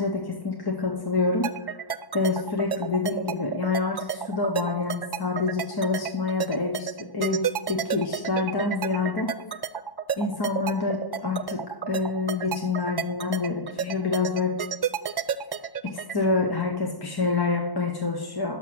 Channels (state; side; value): late; right; 1.1 ms